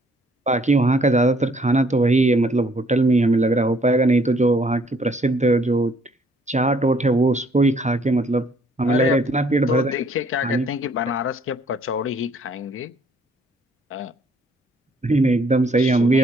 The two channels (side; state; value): both; normal; correlation 0.63